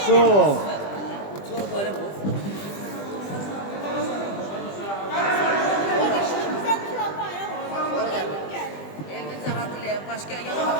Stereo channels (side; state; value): right; late; 20 ms